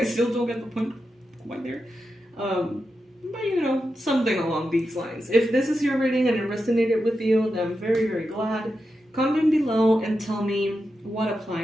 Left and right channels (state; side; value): normal; both; correlation 0.89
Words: still don't get the point quite there. But you know, something along these lines. If this is your reading and it resonated with you, then I'm very, very glad. Comment below and tell me what